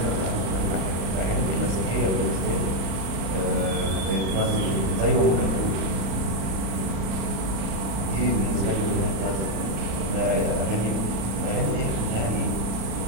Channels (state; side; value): late; left; 36 ms